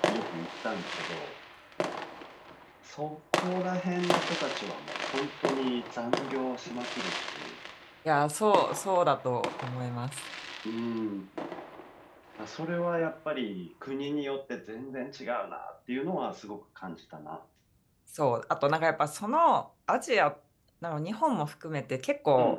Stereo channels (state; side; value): identical; both; correlation 1.00